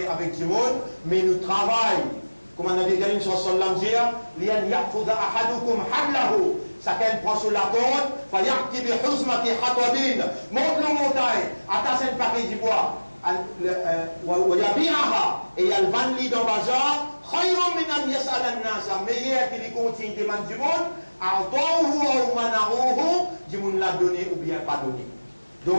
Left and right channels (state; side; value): inverted; both; correlation -1.00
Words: avec du monde, mais nous travaillons. Comme on a dit, une chanson de l'Amzir, l'yan ya'khudha ahadukum hablahu. Chacun prend sur la corde, fa ya'ti bi huzmati hatwabin. Monte le montagne, attache un paquet du bois. Et il y a le vanli dans le bazar, meilleur qu'il continue de demander du monde, l'a donné ou bien pas donné.